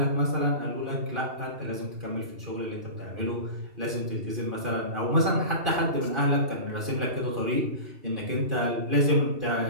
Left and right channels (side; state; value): left; late; 2.7 ms